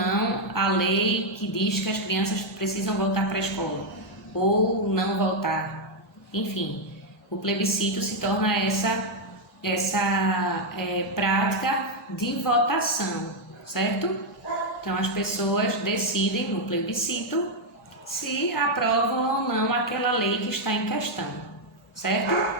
a lei que diz que as crianças precisam voltar para a escola ou não voltar. Enfim, o plebiscito se torna essa prática de votação, certo? Então as pessoas decidem no plebiscito se aprovam ou não aquela lei que está em questão, certo?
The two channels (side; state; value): both; normal; correlation 0.01